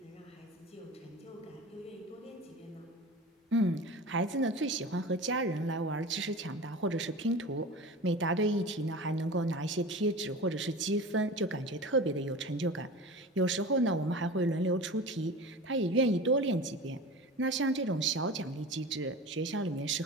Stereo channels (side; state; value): both; normal; correlation 0.33